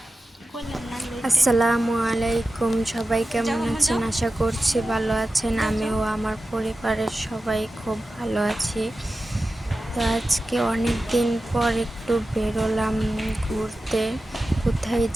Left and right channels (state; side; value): normal; both; correlation 0.93